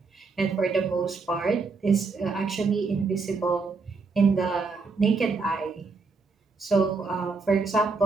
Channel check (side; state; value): left; quieter; 4.3 dB